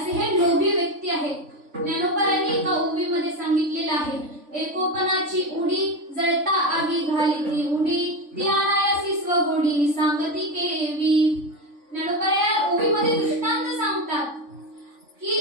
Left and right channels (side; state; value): left; late; 3.5 ms